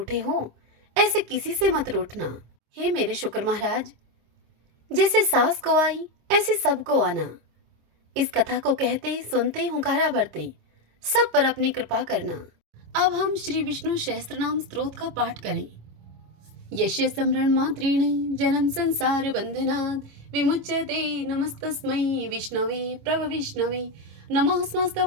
हो ऐसे किसी से मत रूठना। हे मेरे शुक्र महाराज, जैसे सास को आई ऐसे सबको आना। इस कथा को कहते, सुनते, हुंकारा भरते सब पर अपनी कृपा करना। अब हम श्री विष्णु सहस्त्रनाम स्तोत्र का पाठ करें। यस्य स्मरण मात्रेण जन्म संसार बंधनात् विमुच्यते नमस्तस्मै विष्णवे प्रभविष्णवे नमः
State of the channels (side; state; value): left; late; 26 ms